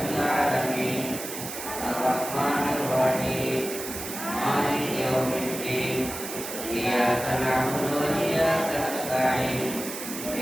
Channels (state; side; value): noise; right; hiss, 8 dB below the sound